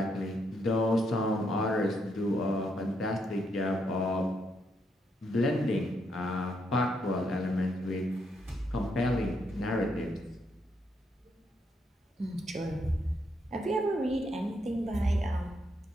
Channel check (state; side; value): normal; both; correlation 0.77